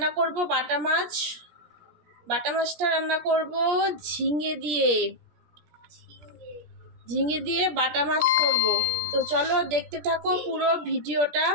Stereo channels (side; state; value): left; late; 17 ms